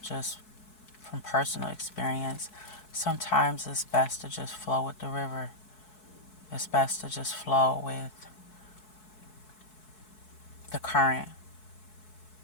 just from personal experience, sometimes it's best to just flow with the river. It's best to just flow with the current.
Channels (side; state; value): right; late; 4.7 ms